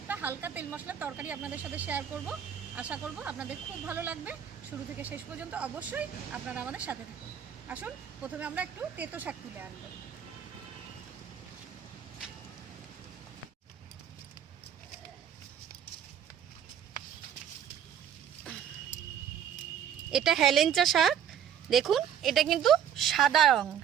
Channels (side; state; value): left; quieter; 9.0 dB